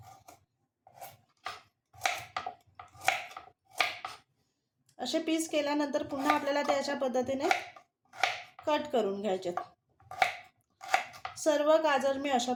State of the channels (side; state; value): both; identical; correlation 1.00